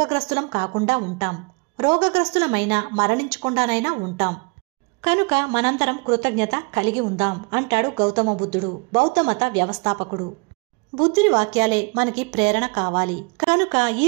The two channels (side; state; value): left; quieter; 31.1 dB